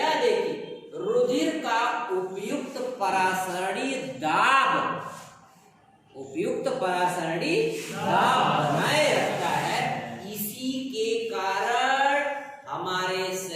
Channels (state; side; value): identical; both; correlation 1.00